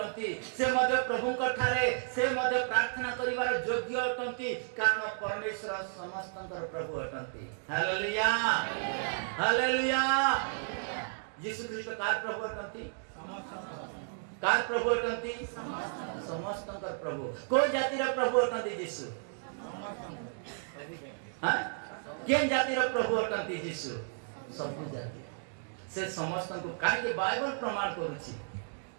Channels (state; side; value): silent; left; digital silence